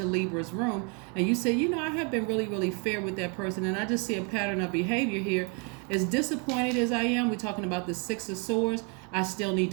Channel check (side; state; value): left; quieter; 35.3 dB